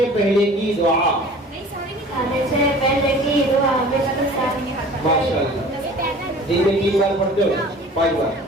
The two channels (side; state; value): both; normal; correlation 0.45